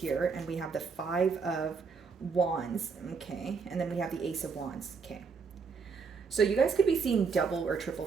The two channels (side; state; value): left; quieter; 5.2 dB